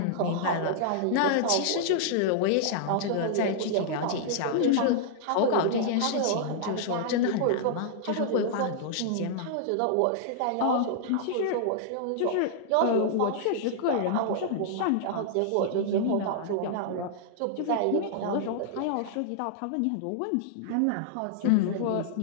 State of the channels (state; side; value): different; both; correlation -0.01